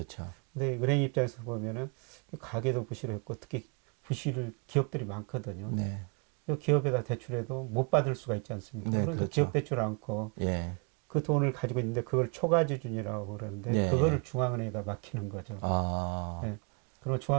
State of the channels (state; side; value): quieter; left; 34.7 dB